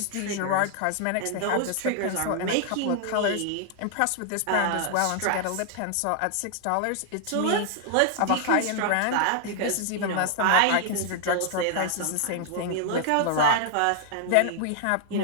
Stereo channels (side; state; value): both; different; correlation 0.00